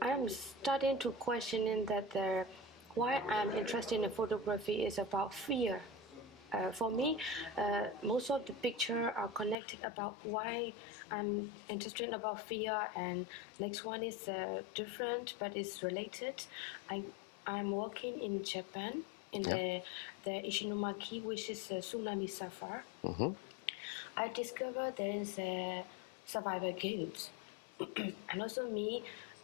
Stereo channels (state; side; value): drops out; right; at 9.6 s